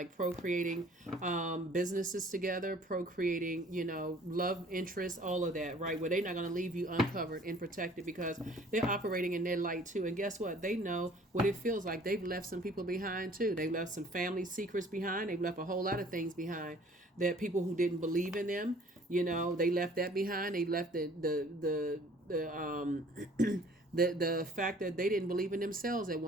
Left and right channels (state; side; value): normal; both; correlation 0.53